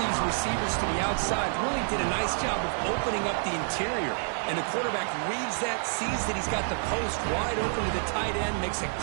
these receivers to the outside really did a nice job of opening up the interior. And the quarterback reads that, sees that he's got the post wide open to the tight end, makes a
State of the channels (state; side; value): silent; left; digital silence